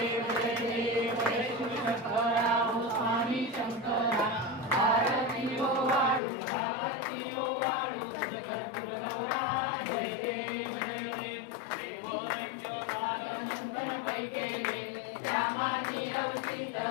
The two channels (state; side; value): drops out; right; at 6.2 s